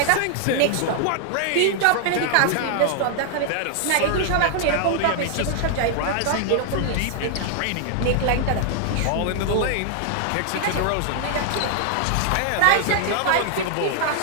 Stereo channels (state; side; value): different; both; correlation 0.00